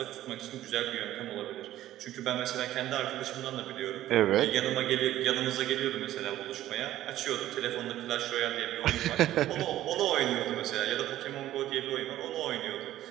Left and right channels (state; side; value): quieter; left; 13.7 dB